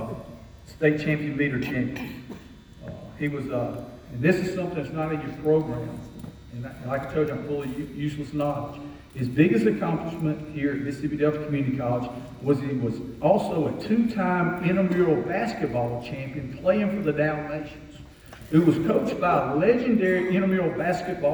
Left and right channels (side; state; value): both; identical; correlation 1.00